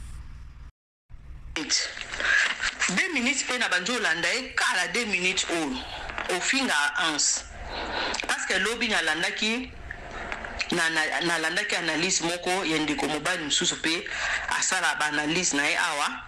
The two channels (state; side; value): identical; both; correlation 1.00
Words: 2 minutes pe na banjo landa e kala 2 minutes o finga ans parce que lobby na landa ki na landa ki analyse moko yende ko mobile msusu pe asala ba analyse na e awa